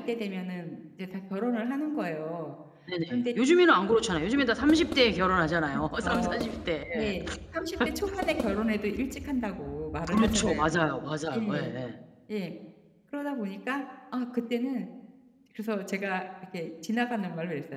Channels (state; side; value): identical; both; correlation 1.00